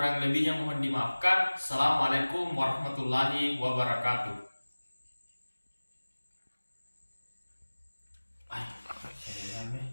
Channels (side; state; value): both; inverted; correlation -1.00